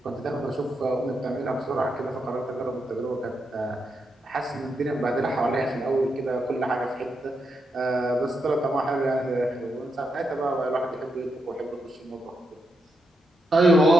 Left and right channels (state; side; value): normal; both; correlation 0.83